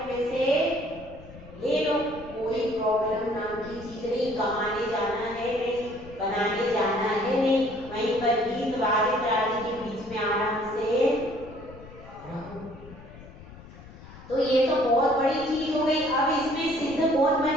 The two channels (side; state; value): left; noise; rumble, 18 dB below the sound